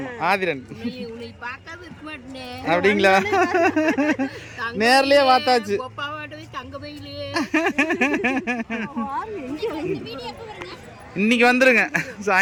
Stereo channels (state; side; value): identical; both; correlation 1.00